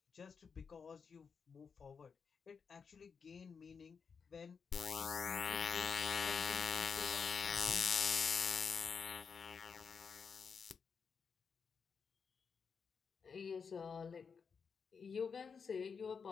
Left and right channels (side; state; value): right; quieter; 5.9 dB